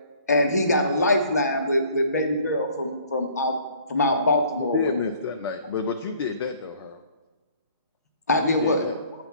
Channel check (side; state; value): both; inverted; correlation -0.56